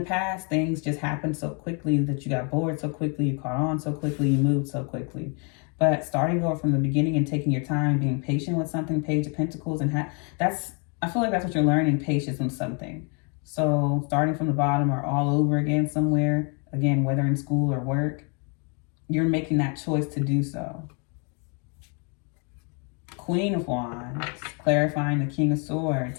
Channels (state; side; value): quieter; right; 36.2 dB